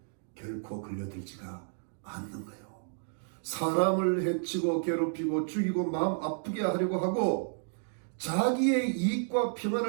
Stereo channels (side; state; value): left; silent; digital silence